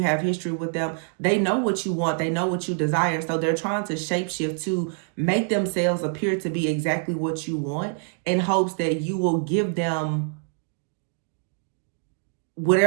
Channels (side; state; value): left; silent; 56 dB below the other